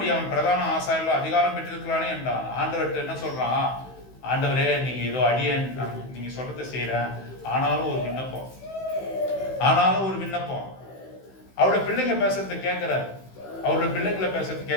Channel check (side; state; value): right; late; 16 ms